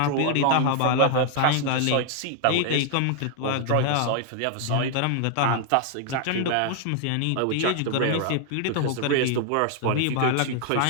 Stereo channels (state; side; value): different; both; correlation 0.00